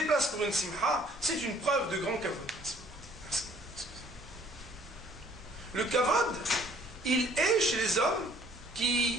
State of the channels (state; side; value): normal; both; correlation 0.58